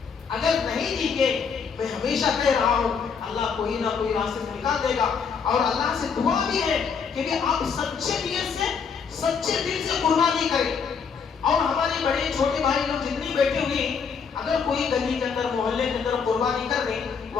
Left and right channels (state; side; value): quieter; right; 6.1 dB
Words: اگر نہیں دی گے، میں ہمیشہ کہہ رہا ہوں اللہ کوئی نہ کوئی راستے سے نکال دے گا، اور اللہ سے دعا بھی ہے کہ بھی آپ سچے نیت سے، سچے دل سے قربانی کریں۔ اور ہمارے بڑے چھوٹے بھائی لوگ جتنے بیٹھے ہوئے، اگر کوئی گلی کے اندر، محلے کے اندر قربانی کر دیں،